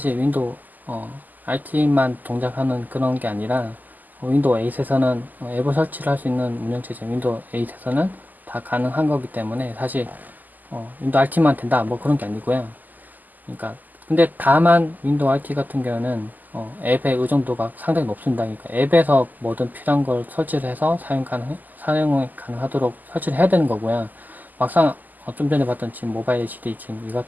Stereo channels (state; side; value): late; left; 0.084 ms